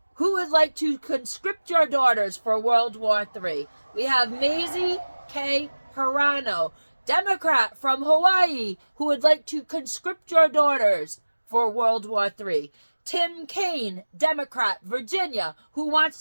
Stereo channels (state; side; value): inverted; both; correlation -1.00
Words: who would like to conscript your daughters for World War III. We have Maisie K. Hirano, Democrat from Hawaii, who would like to conscript your daughters for World War III. Tim Kaine, Democrat, Virginia, who wants